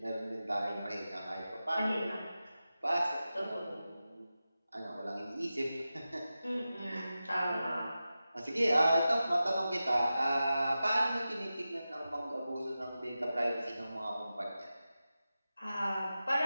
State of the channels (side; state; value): both; inverted; correlation -0.93